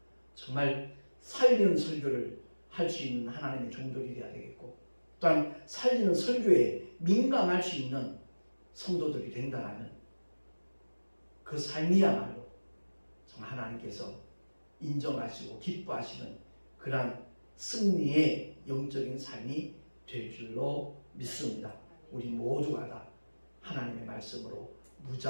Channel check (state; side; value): inverted; both; correlation -1.00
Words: 정말 살리는 설교를 할 수 있는 하나님의 종들이 되어야 되겠고, 또한 살리는 설교에 민감할 수 있는 성도들이 된다면 그 삶이야말로 정말 하나님께서 인정하시고 기뻐하시는 그러한 승리의 영적인 삶이 될 줄로 믿습니다. 우리 모두가 다 하나님의 말씀으로